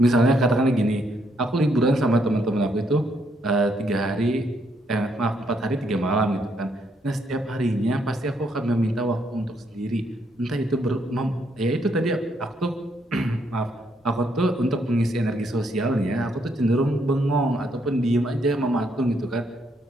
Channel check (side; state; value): both; normal; correlation 0.73